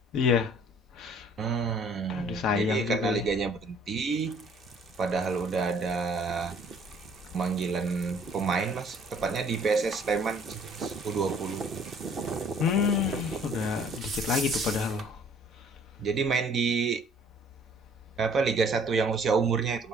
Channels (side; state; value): both; normal; correlation 0.57